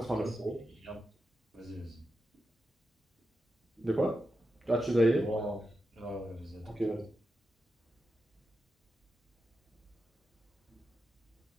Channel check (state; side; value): normal; both; correlation 0.89